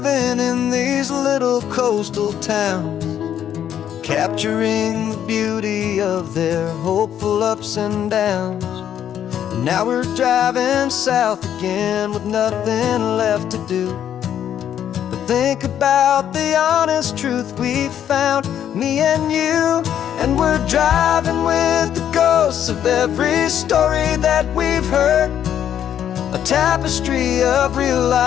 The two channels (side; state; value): right; quieter; 9.9 dB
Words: in these little coastal towns, capturing the beauty of their hopeful ups and downs. And now we're driving south again with nothing left to do but think about the honest truth we found, me and you. And we're driving with the ghosts of every story that we've heard, a tapestry of real